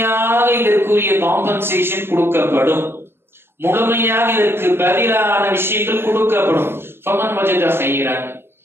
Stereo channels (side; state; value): left; late; 0.11 ms